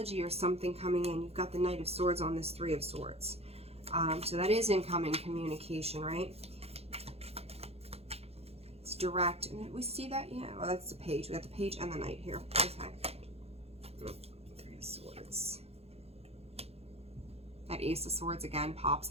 or something coming in. You've got the Knight of Swords on this 3 of Swords. So that is incoming communication, right? It's direct. And we see that? Yeah, well, that's the page. We got the page and the Knight here. Okay. 3 of Swords. That Ace of Swords again pops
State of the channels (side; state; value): left; late; 0.29 ms